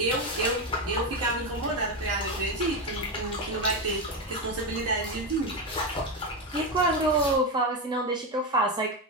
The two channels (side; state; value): both; normal; correlation 0.12